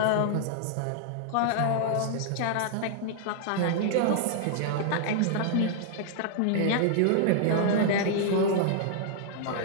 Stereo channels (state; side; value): different; both; correlation -0.01